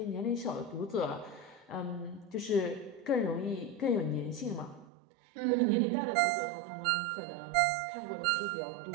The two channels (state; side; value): drops out; left; at 4.9 s